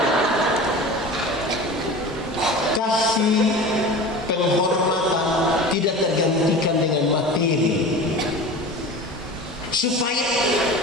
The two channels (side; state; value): both; normal; correlation 0.35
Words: Kasih penghormatan tidak tergantikan dengan materi. Supaya